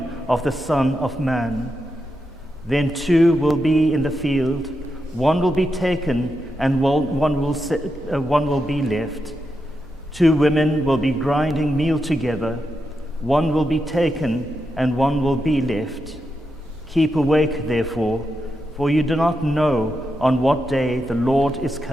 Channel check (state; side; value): normal; both; correlation 0.86